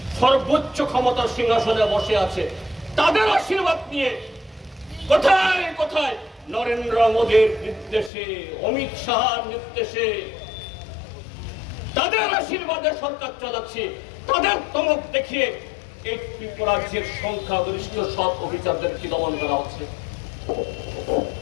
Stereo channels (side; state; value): right; drops out; at 8.1 s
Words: সর্বোচ্চ ক্ষমতার সিংহাসনে বসে আছে, তাদের আশীর্বাদ নিয়ে কোথায় কোথায় নরেন্দ্র মোদীর নির্দেশে, অমিত শাহর নির্দেশে, তাদের আশীর্বাদে সরকার চালাচ্ছে। তাদের তমক দেখিয়ে এই ত্রিপুরাজ্যের সংখ্যাগরিষ্ঠ সব অফিসারদেরকে দমন করা হচ্ছে।